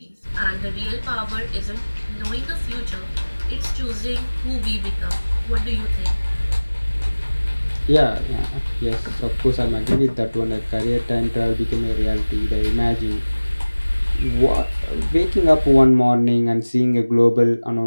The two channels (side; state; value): both; inverted; correlation -1.00